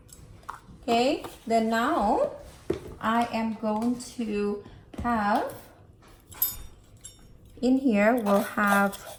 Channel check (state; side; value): identical; both; correlation 1.00